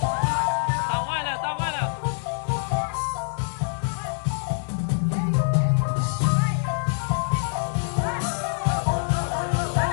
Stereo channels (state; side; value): silent; right; 60 dB below the other